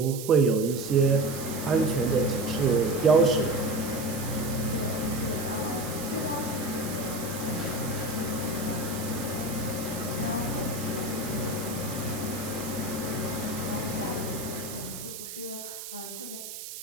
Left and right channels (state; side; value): noise; right; hiss, 10 dB below the sound